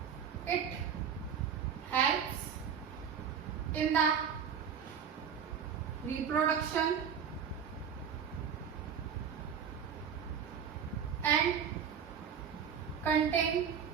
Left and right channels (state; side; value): quieter; left; 7.5 dB